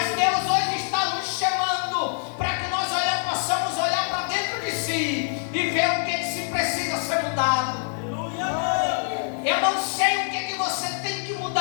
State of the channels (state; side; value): silent; right; digital silence